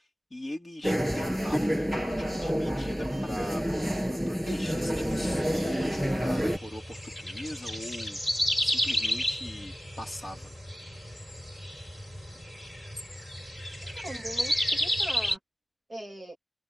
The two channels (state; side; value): normal; both; correlation 0.96